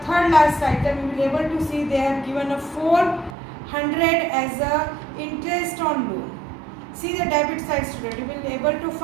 third last item, you will be able to see they have given a 400 as a interest on loan. See the debit side, student, you will be able to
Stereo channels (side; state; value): left; drops out; at 3.4 s